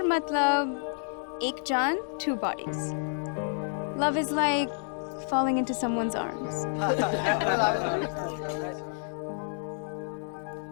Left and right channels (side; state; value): right; silent; digital silence